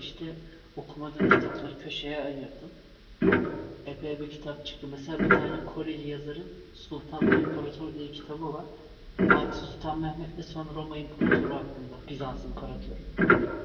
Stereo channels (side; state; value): both; identical; correlation 1.00